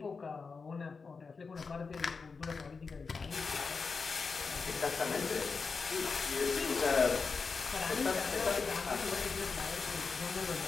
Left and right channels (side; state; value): right; quieter; 4.8 dB